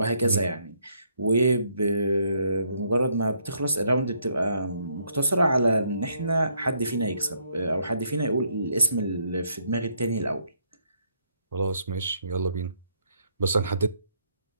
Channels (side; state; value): both; inverted; correlation -0.71